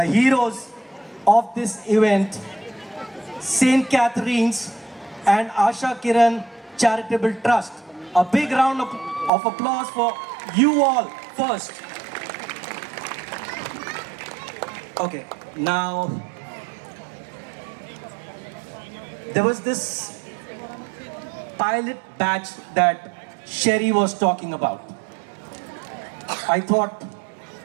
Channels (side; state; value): left; drops out; at 9.3 s